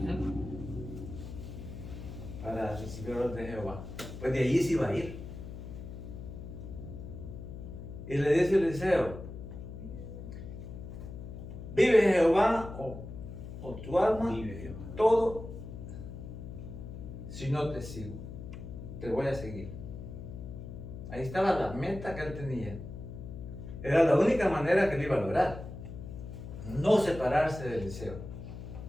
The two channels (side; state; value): left; noise; hum, 10 dB below the sound